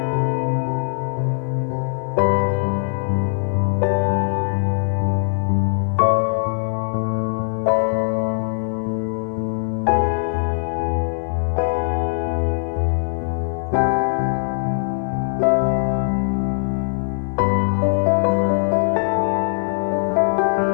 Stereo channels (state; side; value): silent; right; 57 dB below the other